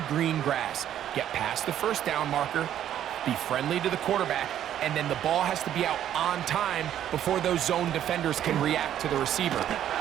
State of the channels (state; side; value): quieter; left; 10.9 dB